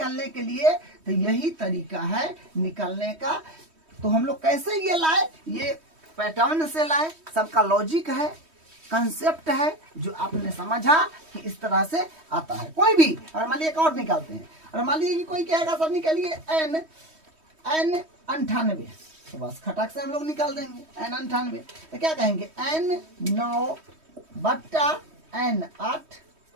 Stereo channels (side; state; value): left; late; 3.2 ms